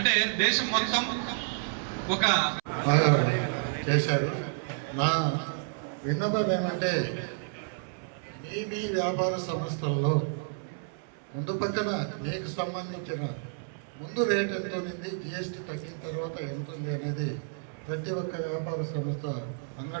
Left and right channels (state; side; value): silent; left; 58 dB below the other